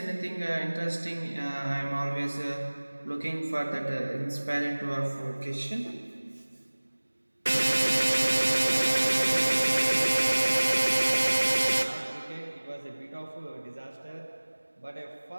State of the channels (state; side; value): inverted; both; correlation -1.00